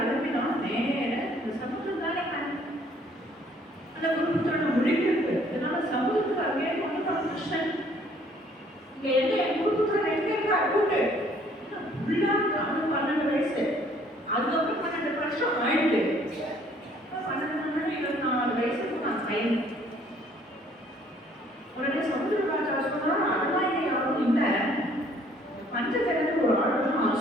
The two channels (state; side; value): normal; both; correlation 0.60